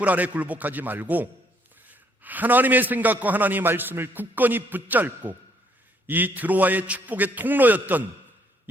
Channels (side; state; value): both; normal; correlation 0.67